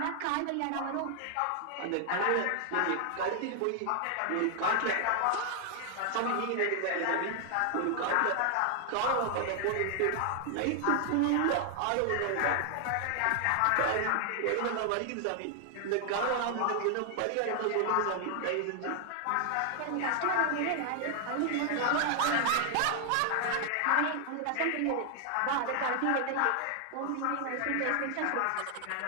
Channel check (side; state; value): both; different; correlation 0.00